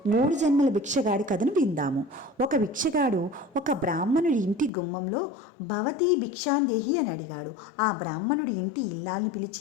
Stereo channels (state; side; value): drops out; right; at 4.7 s